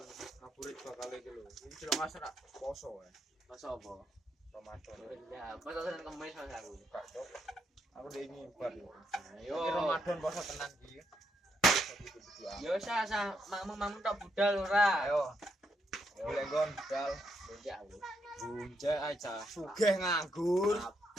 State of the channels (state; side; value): normal; both; correlation 0.78